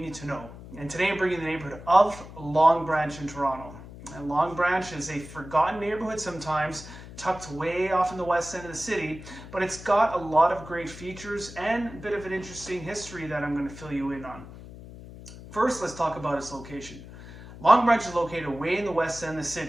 to know. And today I'm bringing the neighborhood of Long Branch in Toronto. And Long Branch is a forgotten neighborhood sometimes, tucked way off in the west end of the city, but it's got a lot of great features and a bit of an interesting history that I'm going to fill you in on. First, let's talk about its location. Long Branch is located way in the west end of the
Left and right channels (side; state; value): left; noise; hum, 15 dB below the sound